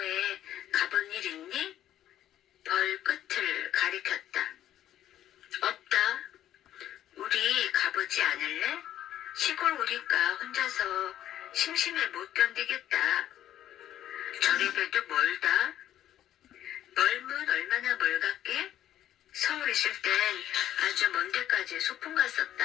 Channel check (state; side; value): quieter; right; 11.9 dB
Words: 가본 일 있니? 벌 끝을 가리켰다. 없다. 우리 가보지 않을래? 시골 오니까 혼자서 심심해 못 견디겠다. 저래봬도 멀다. 멀면 얼마나 멀갔게? 서울 있을 땐 아주 먼 데까지 소풍